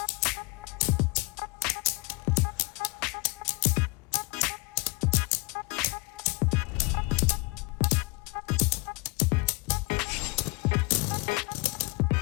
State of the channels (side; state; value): right; quieter; 27.7 dB